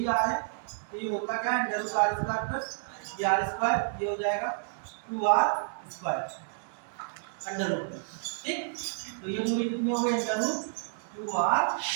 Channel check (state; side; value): silent; left; 58 dB below the other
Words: आर है तो ये होता क्या है, under root R square plus ये आर स्क्वायर, ये हो जाएगा 2r स्क्वायर अंडर रूट, ठीक। तो ये दूरी कितनी हो गई, अंडर रूट 2r।